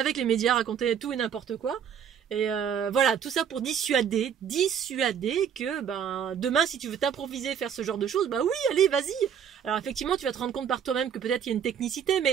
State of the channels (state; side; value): quieter; left; 8.1 dB